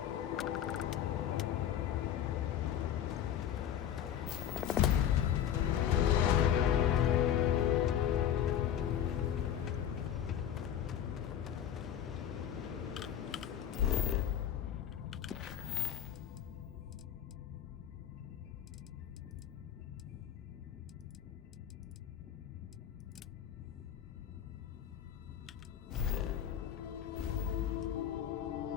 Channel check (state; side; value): quieter; right; 9.9 dB